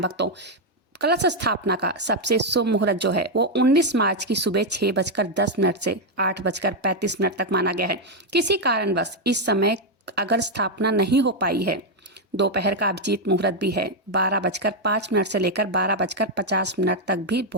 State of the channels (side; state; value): both; normal; correlation 0.01